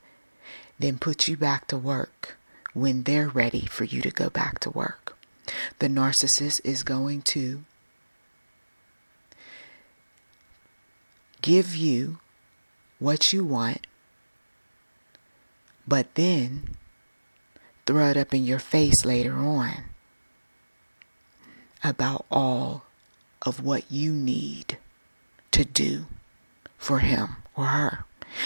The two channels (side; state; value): both; inverted; correlation -1.00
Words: then put you back to work when they're ready for you to go back to work. The narcissist is going to give you what you want, but then throw it up in your face later on about all of what you need to do for him or her.